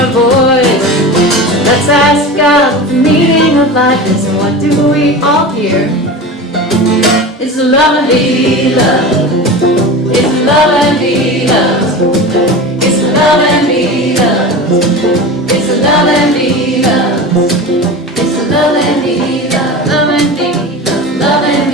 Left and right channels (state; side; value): normal; both; correlation 0.30